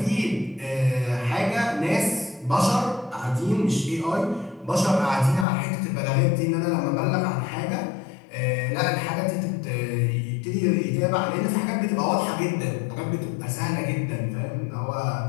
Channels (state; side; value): drops out; right; at 5.5 s